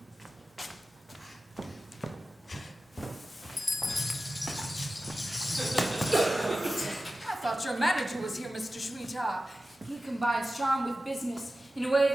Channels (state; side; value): normal; both; correlation 0.94